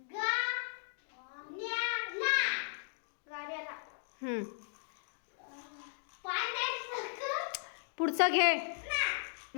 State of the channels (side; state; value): right; silent; digital silence